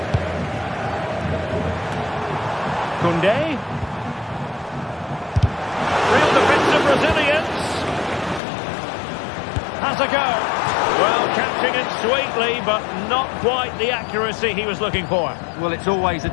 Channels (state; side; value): drops out; right; at 8.4 s